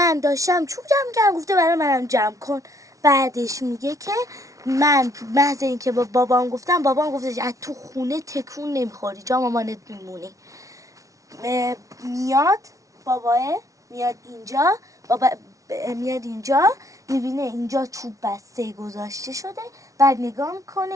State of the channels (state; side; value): late; left; 0.16 ms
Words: داشتم چوب جمع کردم، گفته برای منم جمع کن. بعدش میگه که من محض این که با بابام گفتم، بابام گفته از تو خونه تکون نمیخوری، جا مامانت میمونی. میاد باباه، میاد اینجا، بابا میاد اینجا، میبینه اینجا چوب بسته گذاشته شده. بعد نگاه